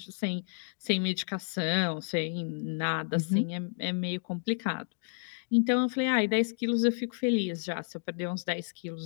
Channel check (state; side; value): silent; right; digital silence